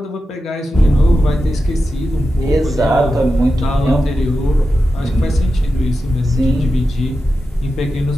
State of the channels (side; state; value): both; normal; correlation 0.91